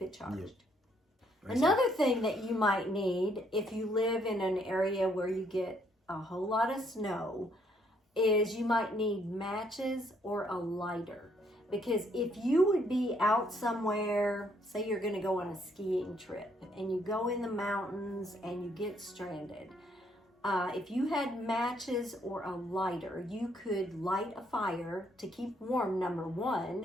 it charged. Yep. Another thing that you might need if you live in an area where you get a whole lot of snow is you might need matches or a lighter. Because if you would be out somewhere, say you're going to go on a skiing trip and you go in the mountains and you get stranded, if you had matches or a lighter, you could light a fire to keep warm, number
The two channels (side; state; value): both; normal; correlation 0.69